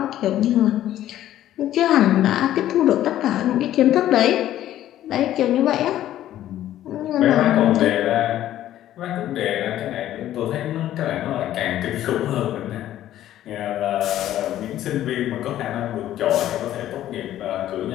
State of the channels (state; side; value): quieter; right; 12.7 dB